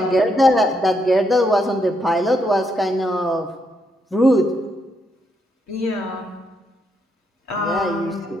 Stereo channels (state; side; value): normal; both; correlation 0.77